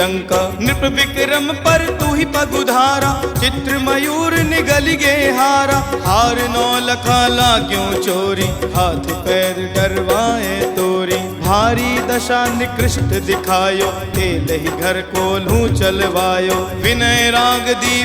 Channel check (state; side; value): identical; both; correlation 1.00